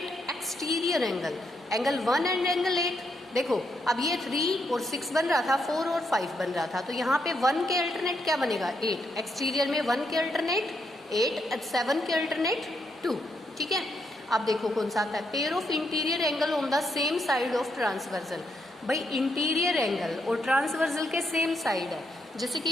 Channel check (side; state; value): both; normal; correlation 0.79